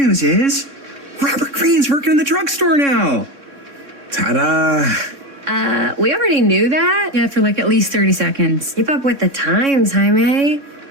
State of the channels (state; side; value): late; left; 3.6 ms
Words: is Robert Greene's working in the drugstore now. Ta-da! We already knew that. Yeah, for like at least 30 seconds. Keep up with the times, Jaime.